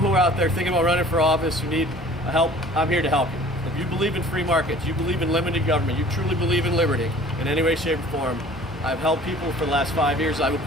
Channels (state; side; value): normal; both; correlation 0.49